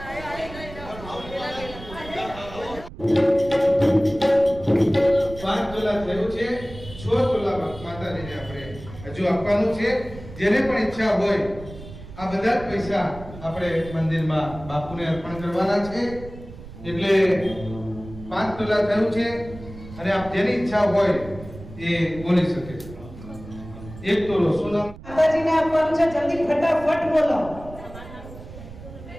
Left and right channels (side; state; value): right; noise; rumble, 15 dB below the sound